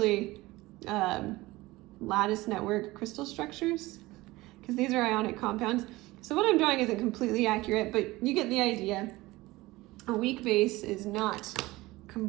lattice network crystal structures, because these are ionic compounds. So what I'm drawing isn't completely accurate, but you get the idea. A weak base is not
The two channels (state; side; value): quieter; left; 19.7 dB